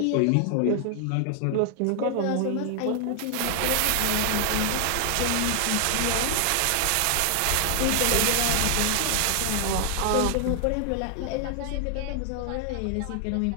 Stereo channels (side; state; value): both; different; correlation 0.00